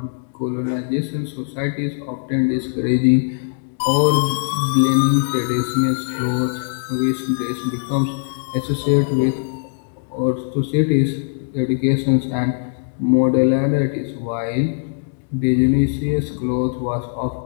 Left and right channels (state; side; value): silent; right; digital silence